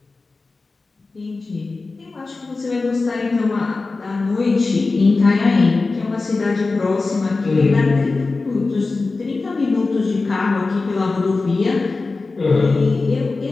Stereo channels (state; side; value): quieter; right; 3.7 dB